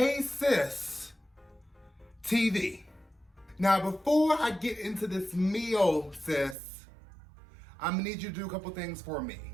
Sis TV. Now, before I get into this meal, sis, I'm gonna need you to do a couple things for me.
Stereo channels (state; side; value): drops out; left; at 6.6 s